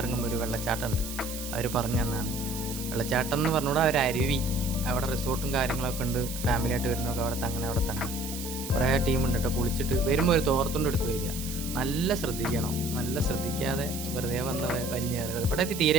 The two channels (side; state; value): right; noise; hiss, 9 dB below the sound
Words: ഇറങ്ങുമ്പോൾ ഒരു വെള്ളച്ചാട്ടം ഉണ്ട്. അവർ പറഞ്ഞു തന്നാണ്. വെള്ളച്ചാട്ടം എന്ന് പറഞ്ഞുകൂടെ ഒരു അരുവി, അവിടെ റിസോർട്ടും കാര്യങ്ങളൊക്കെ ഉണ്ട്. ഫാമിലിയായിട്ട് വരുന്നതൊക്കെ അവിടെ തങ്ങണം. കുറേ ടീമുണ്ട് കേട്ടോ. കുളിച്ചിട്ട് വരുമ്പോൾ ഒരു തോർത്തുകൊണ്ട് എടുത്ത് വരിക. നല്ല ശ്രദ്ധിക്കണം, നല്ല ശ്രദ്ധിക്കാതെ വെറുതെ വന്ന് വലിഞ്ഞ് കയറിയത്. ഇവിടെ